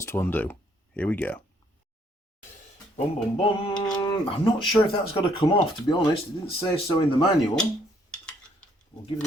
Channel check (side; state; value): both; normal; correlation 0.67